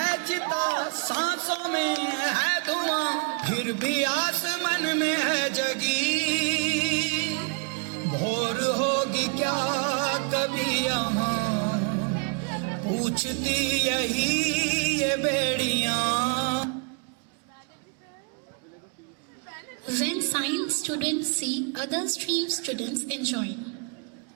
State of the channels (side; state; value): left; quieter; 35.9 dB